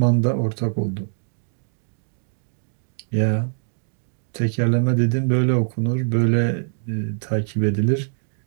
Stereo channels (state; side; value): silent; left; digital silence